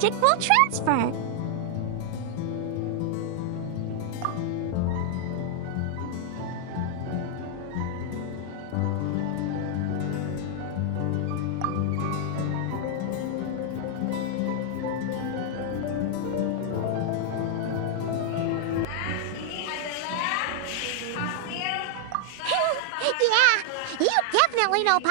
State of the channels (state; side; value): different; both; correlation 0.00